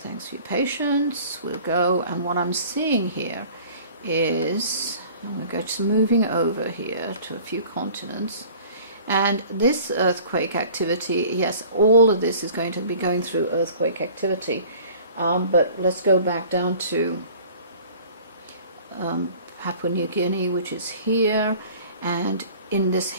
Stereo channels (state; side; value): inverted; both; correlation -0.47